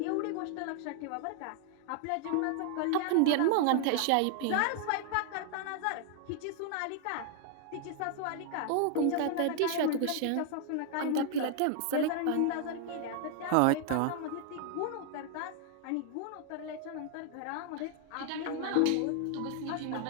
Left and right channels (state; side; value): different; both; correlation 0.00